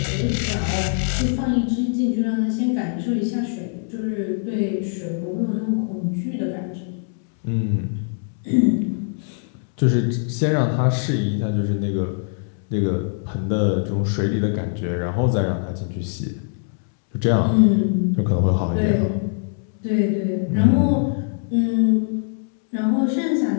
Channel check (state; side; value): silent; right; 64 dB below the other